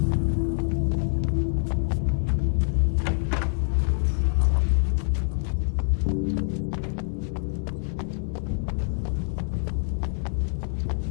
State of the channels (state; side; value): silent; right; digital silence